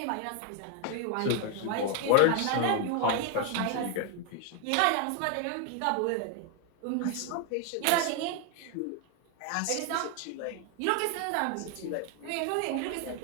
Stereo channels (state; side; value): different; both; correlation 0.01